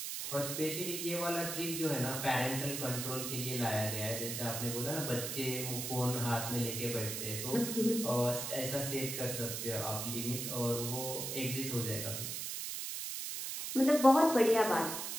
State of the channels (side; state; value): right; noise; hiss, 4 dB below the sound